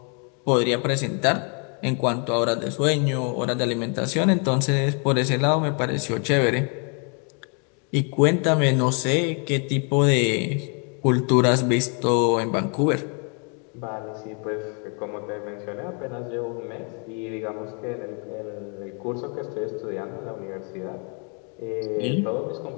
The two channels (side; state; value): right; quieter; 37.9 dB